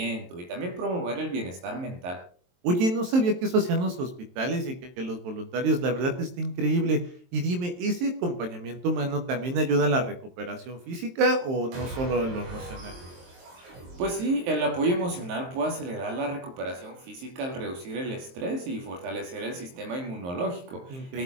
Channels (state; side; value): late; left; 23 ms